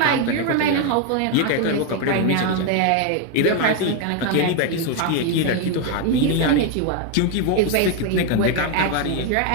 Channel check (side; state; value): both; different; correlation 0.01